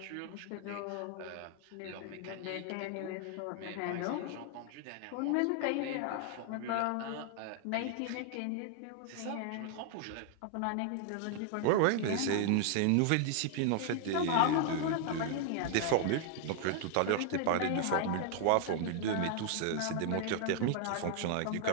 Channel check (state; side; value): different; both; correlation 0.00